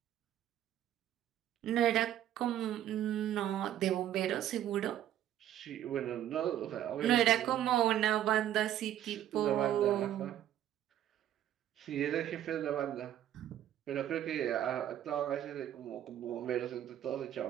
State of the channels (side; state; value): left; quieter; 11.6 dB